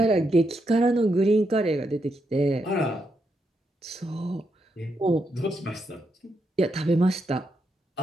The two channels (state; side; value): normal; both; correlation 0.82